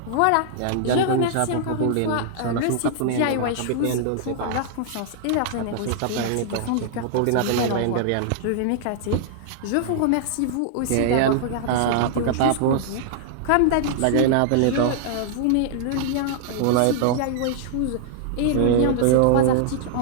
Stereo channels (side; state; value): both; different; correlation -0.01